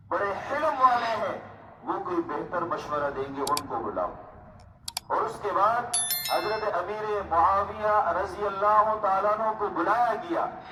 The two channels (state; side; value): identical; both; correlation 1.00